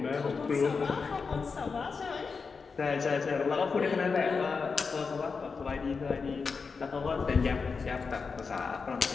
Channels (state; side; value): quieter; right; 5.0 dB